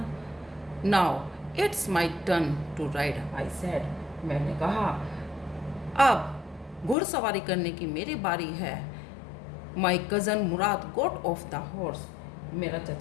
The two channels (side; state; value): right; drops out; at 7.0 s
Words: Now it's my turn to ride, I said. मैंने कहा, अब घुड़सवारी करने की मेरी बारी है। My cousin Murad got off the horse. मेरा